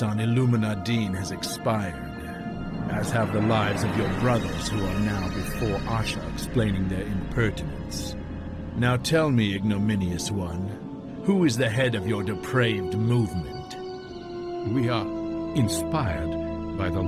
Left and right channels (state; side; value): identical; both; correlation 1.00